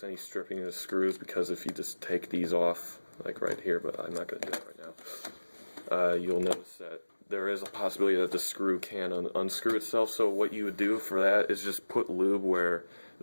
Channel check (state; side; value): inverted; both; correlation -1.00